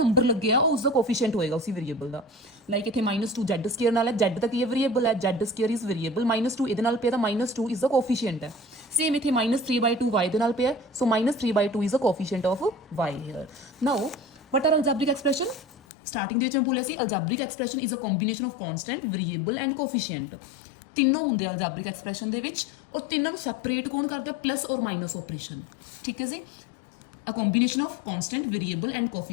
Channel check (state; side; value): drops out; right; at 15.8 s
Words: ਲੱਗਿਆ ਉਹ ਉਸਦਾ ਕੋਫੀਸ਼ੀਐਂਟ ਹੋਏਗਾ ਉਸੇ ਵੇਰੀਏਬਲ ਦਾ. ਲਾਈਕ ਇੱਥੇ -2z² ਨਾਲ ਹੈ, z ਤਾਂ ਕੀ ਹੈ? ਵੇਰੀਏਬਲ ਹੈ, z² ਇਜ਼ ਵੇਰੀਏਬਲ. -2 ਇਹਦੇ ਨਾਲ ਪਿਆ ਤਾਂ -2 ਇਜ਼ ਦਾ ਕੋਫੀਸ਼ੀਐਂਟ ਹੈ. ਸੇਮ ਇੱਥੇ -3/2 y ਦੇ ਨਾਲ ਪਿਆ, so -3/2 is the coefficient of y here. Now what are algebraic expression? Starting ਦੇ ਵਿੱਚ ਮੈਂ ਬੋਲਿਆ ਸੀ algebraic expression is a combination of constant, variable and coefficient. ਤਿੰਨੋਂ ਹੁੰਦੇ ਆ ਅਲਜੈਬਰਿਕ ਐਕਸਪ੍ਰੈਸ਼ਨ ਦੇ ਵਿੱਚ, ਔਰ ਤਿੰਨਾਂ ਨੂੰ ਸੈਪਰੇਟ ਕੌਣ ਕਰਦਾ? ਪਲੱਸ ਔਰ ਮਾਈਨਸ ਆਪਰੇਸ਼ਨ. ਠੀਕ ਹੈ ਜੀ. A combination of constant, variable and